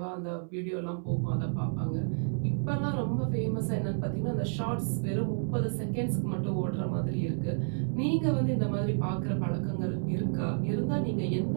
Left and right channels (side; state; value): left; silent; 57 dB below the other